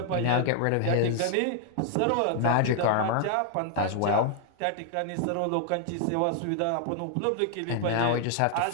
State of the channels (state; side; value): different; both; correlation 0.00